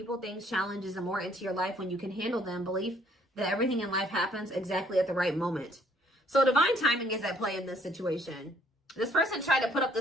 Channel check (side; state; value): both; normal; correlation 0.63